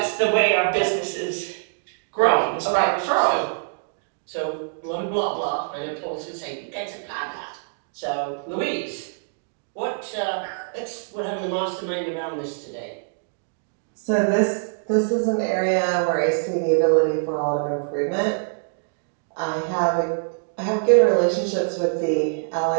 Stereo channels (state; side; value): silent; left; digital silence